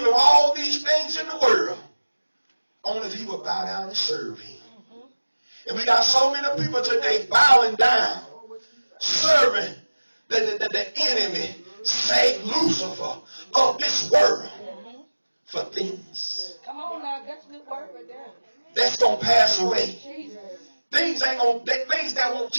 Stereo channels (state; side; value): inverted; both; correlation -1.00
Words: all these things in the world. Only if he would bow down and serve him. And we got so many people today bowing down, serving the enemy, Satan, Lucifer, of this world for things. Come on now, that's a good word right there. That's going to pass away. Jesus. Things that won't